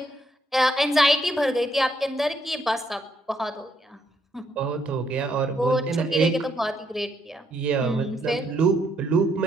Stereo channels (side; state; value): both; normal; correlation 0.74